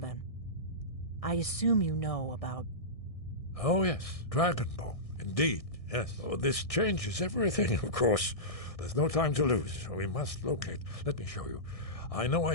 I assume you know about... Oh, yes, Dragonbone. Indeed, yes. Oh, this changes everything, of course. There's no time to lose. We must locate. Let me show you. I know I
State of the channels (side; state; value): right; late; 1.6 ms